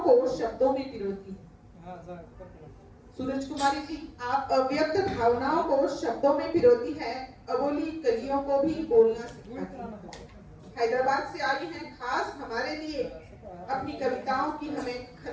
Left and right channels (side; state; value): both; identical; correlation 1.00